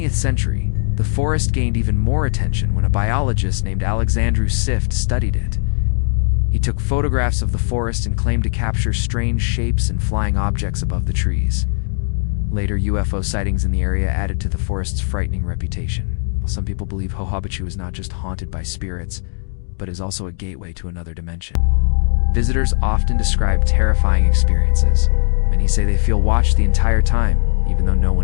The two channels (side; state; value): right; silent; digital silence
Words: century, the forest gained even more attention when a biologist named Alexandru Sift studied it. He took photographs of the forest and claimed to capture strange shapes and flying objects above the trees. Later, UFO sightings in the area added to the forest's frightening reputation. Some people believe Hajubachu is not just haunted by spirits, but is also a gateway to another dimension. Visitors often describe terrifying experiences. Many say they feel watched the entire time, even though no